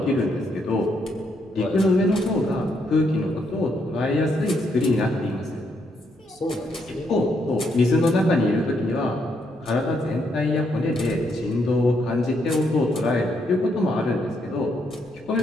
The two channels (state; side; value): normal; both; correlation 0.76